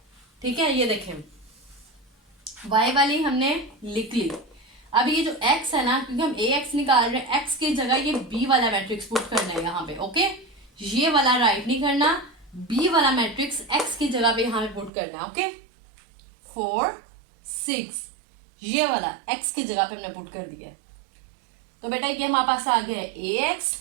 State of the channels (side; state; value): left; drops out; at 14.9 s